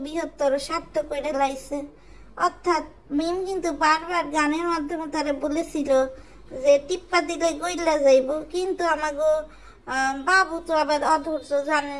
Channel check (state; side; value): identical; both; correlation 1.00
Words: বৃহত্তর স্বার্থ করে লাইছে। অর্থাৎ মিম কিন্তু বারবার গানের মাধ্যমে তারা বলেছিল যে টিপ্পা দিলে গইলা যাইব, কিন্তু আমাগো বাবু তো আবার অধৈর্য,